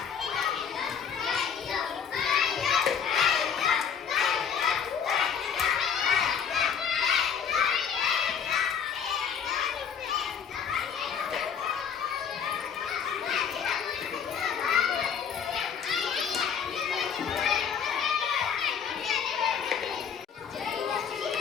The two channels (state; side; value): quieter; right; 7.3 dB